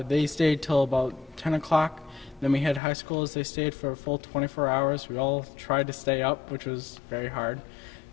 they stayed till about 10 o'clock. Then we had high schoolers, they stayed for a full 24 hours. We all tried to stay up, which was very hard.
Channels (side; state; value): right; drops out; at 2.8 s